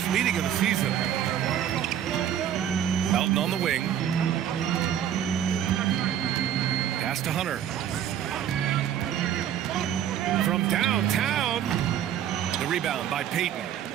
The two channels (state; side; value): quieter; left; 10.0 dB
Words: meeting of the season. Melton on the wing. Pass to Hunter. From downtown. The rebound by Payton.